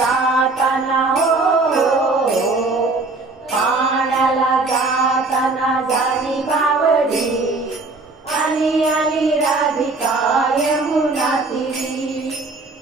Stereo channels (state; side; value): quieter; left; 3.4 dB